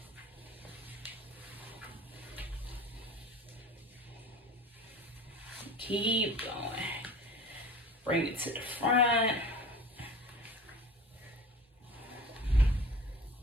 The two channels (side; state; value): both; normal; correlation 0.39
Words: Keep going. Bring it to the front.